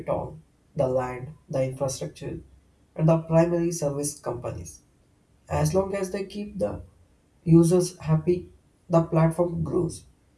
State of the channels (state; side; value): identical; both; correlation 1.00